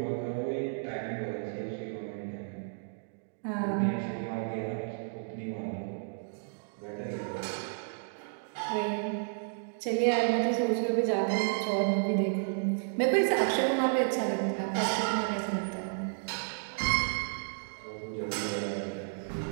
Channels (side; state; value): left; silent; digital silence